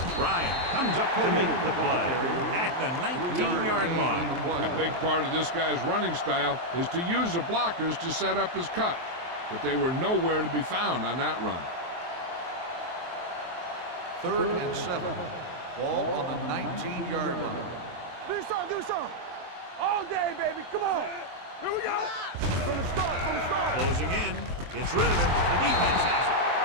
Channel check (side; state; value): left; late; 23 ms